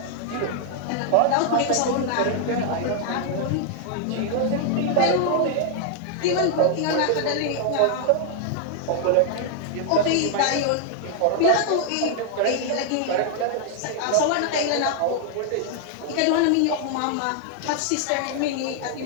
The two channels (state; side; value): different; both; correlation 0.00